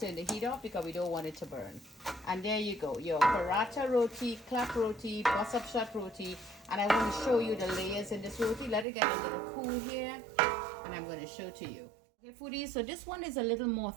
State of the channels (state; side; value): drops out; left; at 8.8 s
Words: turn the heat off because we don't want it to burn. And there you go. Your paratha roti, clap roti, bus up shot roti. And I want to show you the layers in this roti. Let it get a little cool here. And I'm going to show to you. Okay, foodies. So this one is a little more